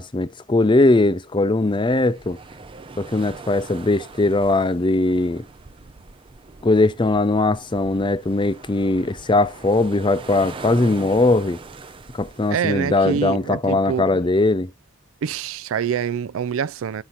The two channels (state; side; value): normal; both; correlation 0.60